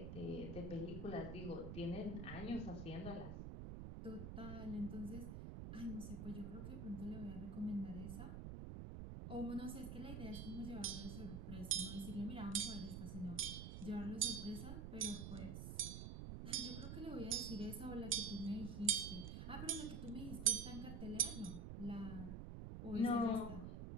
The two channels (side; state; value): right; noise; rumble, 6 dB below the sound